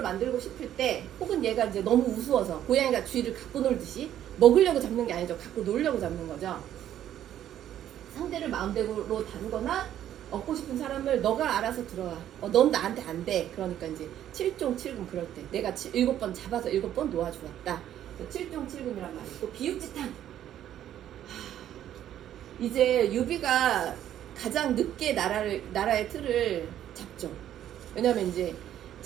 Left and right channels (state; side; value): quieter; left; 11.3 dB